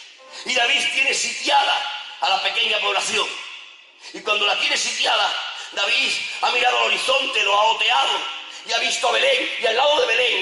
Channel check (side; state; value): both; identical; correlation 1.00